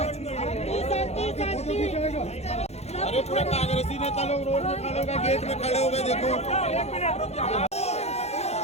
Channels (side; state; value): right; late; 0.31 ms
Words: अरे पूरा कांग्रेसी नेता लोग रोड में खड़े हो गए, गेट में खड़े हो गए। देखो